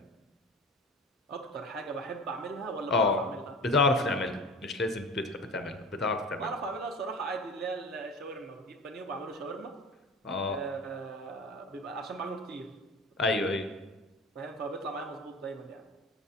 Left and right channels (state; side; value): normal; both; correlation 0.35